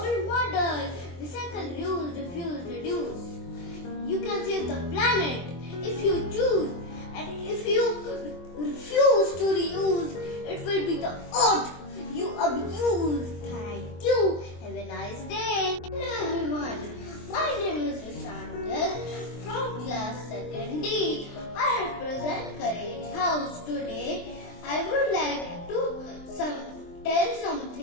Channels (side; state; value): right; late; 23 ms